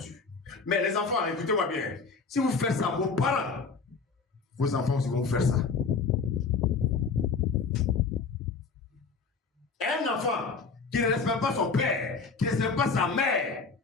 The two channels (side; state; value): right; quieter; 4.8 dB